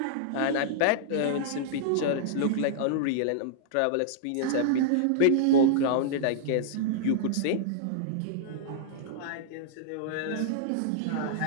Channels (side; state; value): both; different; correlation -0.02